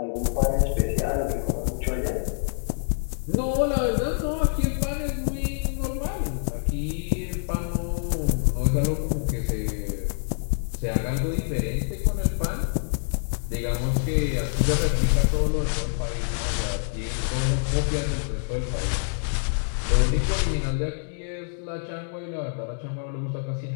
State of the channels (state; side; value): silent; right; digital silence